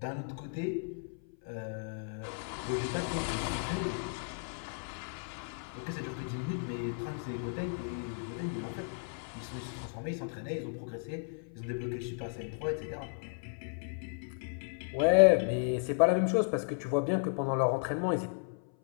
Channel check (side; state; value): right; silent; 55 dB below the other